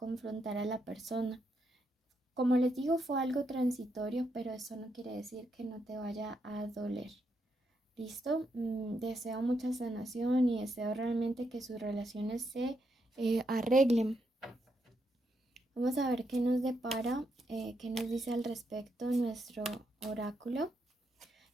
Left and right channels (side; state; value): both; normal; correlation 0.80